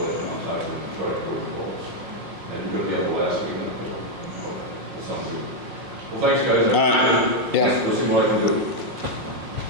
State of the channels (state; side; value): late; left; 5.6 ms